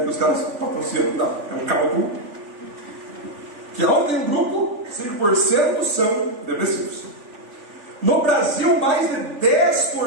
os caras patrocinam, não. É um cálculo que, ao ter um grupo, 5% são depressivos. No Brasil, mais de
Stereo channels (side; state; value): left; late; 3.4 ms